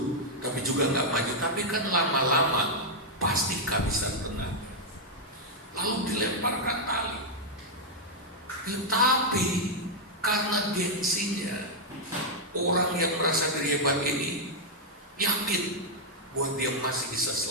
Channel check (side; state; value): both; normal; correlation -0.04